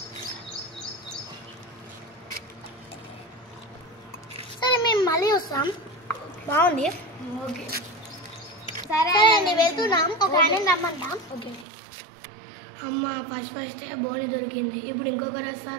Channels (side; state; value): left; drops out; at 11.7 s